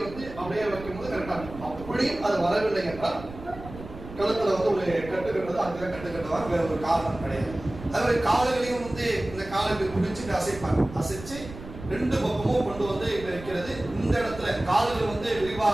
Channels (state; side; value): noise; right; rumble, 14 dB below the sound